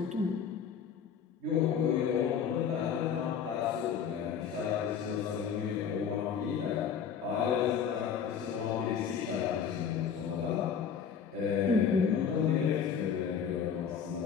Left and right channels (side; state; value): right; quieter; 7.4 dB